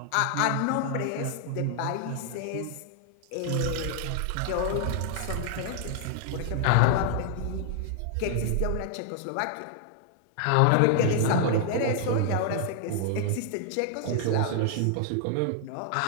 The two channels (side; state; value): both; different; correlation 0.00